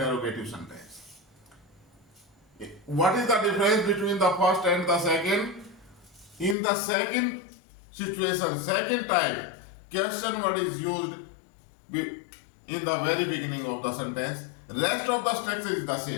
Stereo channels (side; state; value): right; drops out; at 6.6 s